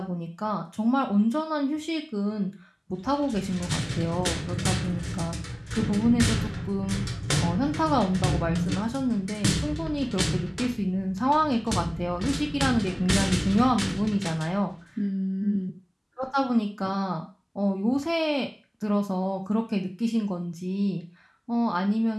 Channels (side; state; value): both; identical; correlation 1.00